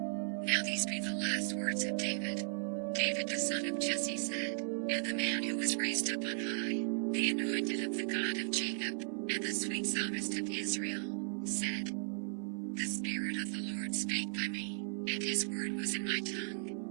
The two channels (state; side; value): silent; left; 54 dB below the other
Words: Now these be the last words of David. David the son of Jesse said, and the man who was raised up on high, the anointed of the God of Jacob, and the sweet psalmist of Israel, said, The Spirit of the Lord spake by me, and his word was in my